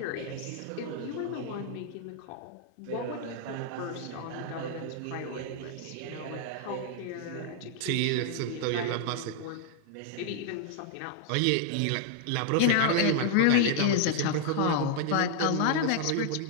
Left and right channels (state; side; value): different; both; correlation 0.00